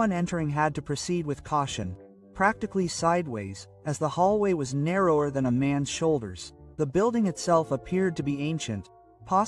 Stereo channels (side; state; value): both; identical; correlation 1.00